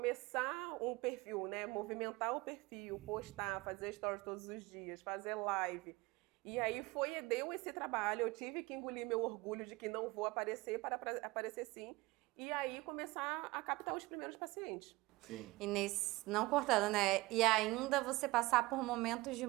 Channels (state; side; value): quieter; left; 21.2 dB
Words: um perfil, né? Movimentar o perfil, postar, fazer stories todos os dias, fazer live. E aí deu esse trabalho, eu tive que engolir meu orgulho de que não vou aparecer para aparecer sim. E aí começar a captar os primeiros pacientes. Sim. E não cortando, né? E ainda você passar por momentos de